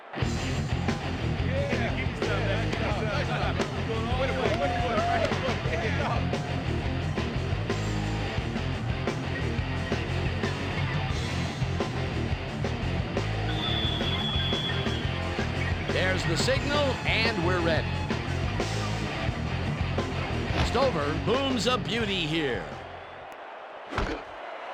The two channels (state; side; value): identical; both; correlation 1.00